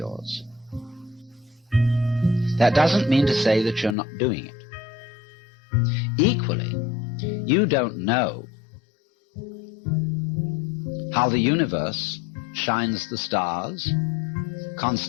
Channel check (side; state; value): right; drops out; at 4.0 s